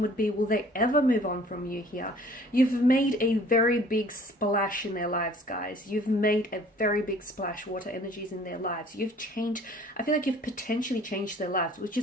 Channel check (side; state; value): both; normal; correlation 0.53